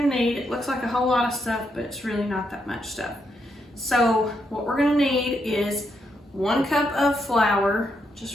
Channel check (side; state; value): both; normal; correlation 0.80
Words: to need. It looks like a whole lot of stuff, but it's really not that much stuff. So what we're going to need is 1 cup of flour,